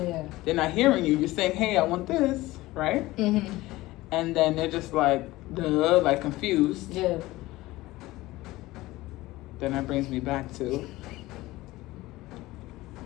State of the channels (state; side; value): quieter; right; 18.5 dB